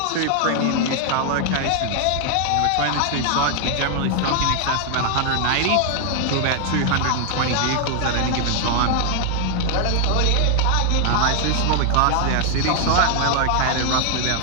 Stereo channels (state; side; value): different; both; correlation 0.00